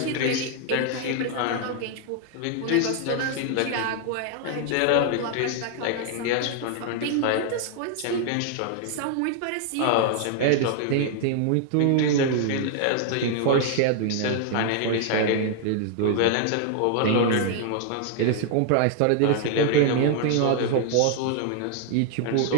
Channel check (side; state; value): both; different; correlation 0.00